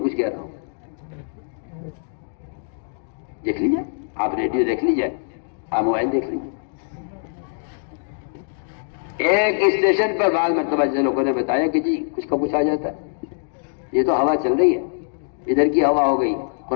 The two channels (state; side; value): silent; right; digital silence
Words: کچھ کہہ رہا ہوں. دیکھ لیجیے، آپ ریڈیو دیکھ لیجیے، آپ موبائل دیکھ لیجیے. ایک اسٹیشن پر بعض مرتبہ لوگوں نے بتایا کہ جی کچھ کا کچھ آ جاتا ہے. یہ تو ہوا چل رہی ہے، ادھر کی ہوا ہو گئی،